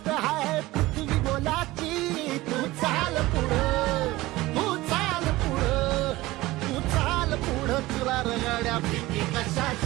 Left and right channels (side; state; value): left; quieter; 18.8 dB